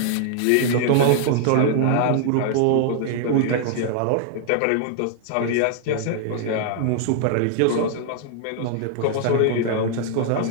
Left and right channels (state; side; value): different; both; correlation 0.00